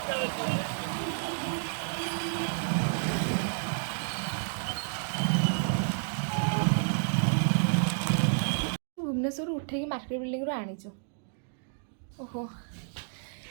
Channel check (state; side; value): silent; left; digital silence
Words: भुवनेश्वर उठेकी मार्केट बिल्डिंग आनीचु ओहो